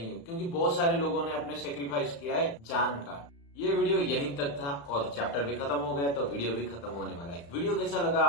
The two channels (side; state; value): right; late; 35 ms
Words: हूँ, क्योंकि बहुत सारे लोगों ने अपने सेक्रीफाइस किया है जान का। ये वीडियो यहीं तक था और चैप्टर भी खत्म हो गया तो वीडियो भी खत्म होने वाला है। वीडियो कैसा लगा